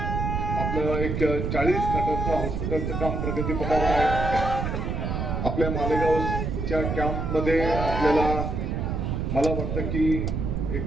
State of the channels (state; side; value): noise; right; rumble, 2 dB below the sound